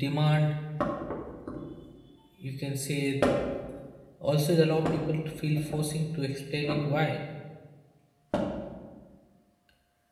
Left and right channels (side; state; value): both; identical; correlation 1.00